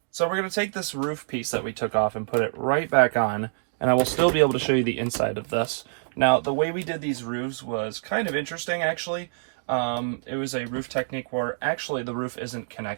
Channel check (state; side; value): silent; left; digital silence